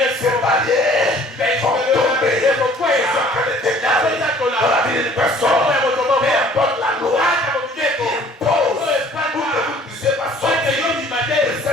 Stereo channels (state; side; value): normal; both; correlation 0.53